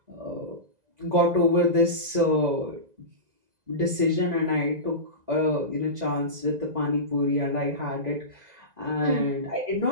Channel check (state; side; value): late; left; 2.0 ms